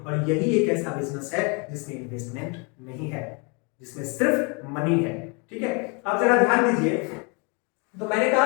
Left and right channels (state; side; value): quieter; right; 32.9 dB